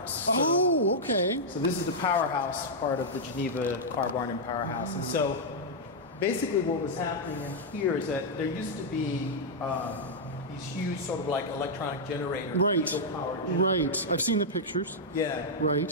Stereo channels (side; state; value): both; normal; correlation -0.05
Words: Oh, okay. So this is the Powerhouse part of the Geneva car barn and Powerhouse. And so basically what was happening in here is that there used to be these huge sort of like electronic generators. Diesel-powered generators. Right. I've seen the pictures. Yeah.